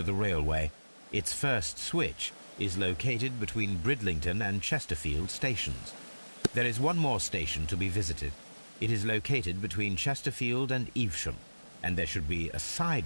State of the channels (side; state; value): both; inverted; correlation -1.00